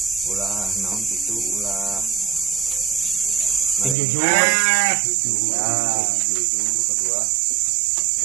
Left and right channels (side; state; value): left; drops out; at 4.0 s